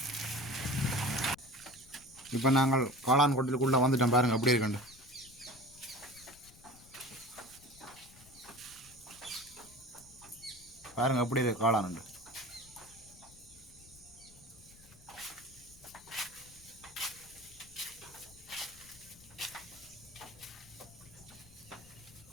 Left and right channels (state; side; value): noise; left; rumble, 22 dB below the sound